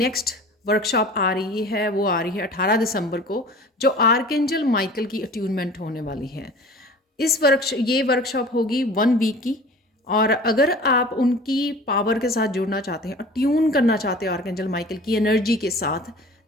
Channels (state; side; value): normal; both; correlation 0.42